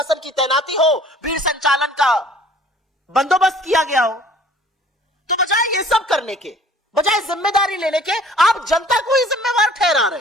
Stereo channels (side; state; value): both; normal; correlation 0.52